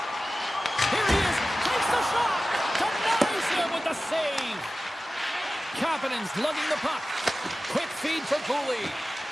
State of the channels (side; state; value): both; normal; correlation 0.96